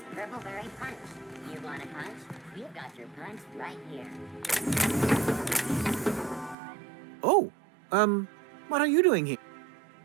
Purpleberry Punch. You want a punch? We've got your punch right here. Oh, what are you doing here?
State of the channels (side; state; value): left; drops out; at 6.6 s